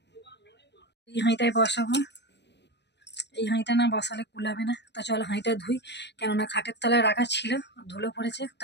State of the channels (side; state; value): right; late; 0.50 ms